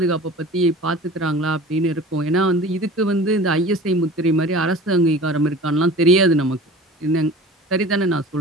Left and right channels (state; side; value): normal; both; correlation 0.40